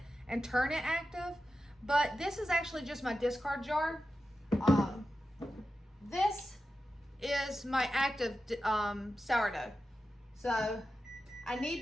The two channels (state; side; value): normal; both; correlation 0.92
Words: and turn it active, but this is actually just my discard jar. This is my active sourdough. So I need